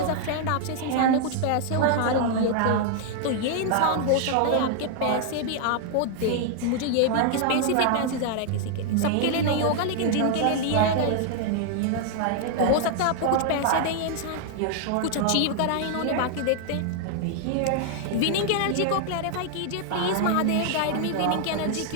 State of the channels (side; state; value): both; different; correlation 0.00